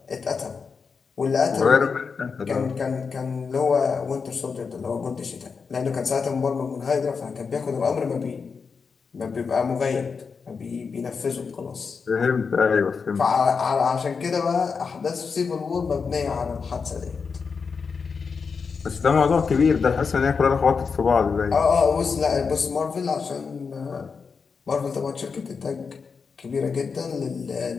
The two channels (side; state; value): right; quieter; 5.4 dB